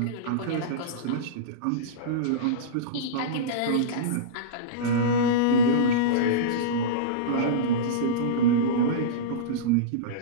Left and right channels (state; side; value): different; both; correlation -0.06